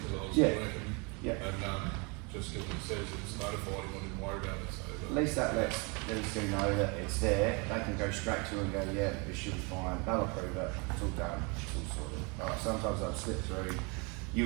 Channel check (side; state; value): left; quieter; 31.2 dB